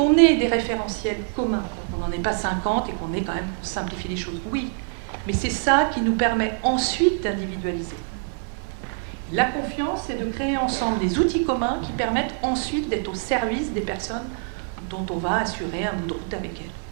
des référentiels communs, qu'on n'en ait pas 50 et qu'on ait quand même simplifié les choses. Oui, mais c'est ça qui nous permet ensuite d'individualiser. La confiance, c'est de créer ensemble des outils communs qui permettent ensuite d'être au service des personnes dont on va assurer un bout de route avec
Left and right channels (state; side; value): silent; left; 62 dB below the other